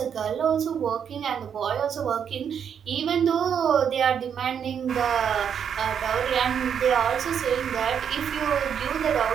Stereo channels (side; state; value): left; quieter; 7.9 dB